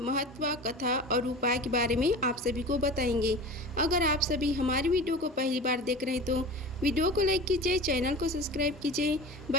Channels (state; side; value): normal; both; correlation 0.34